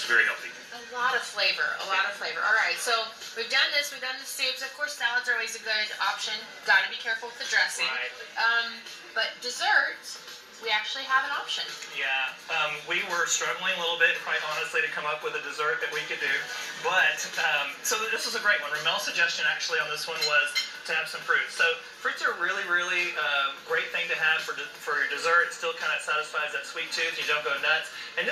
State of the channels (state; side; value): identical; both; correlation 1.00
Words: very healthy. A lot of flavor, All right, so we've done this. We've done the soups. Of course, salads are always a good option. Got to be careful with the dressing. Right. But desserts, we actually have an option. Yeah, we were struggling a little bit, quite honestly, to come up with a dessert that we could do. But, so this was a great one. Ramel's suggestion actually on this one was to have some fruits. So fruits are really, really great thing to have for your dessert. It still kind of satisfies that sweet tooth. You don't go nuts. And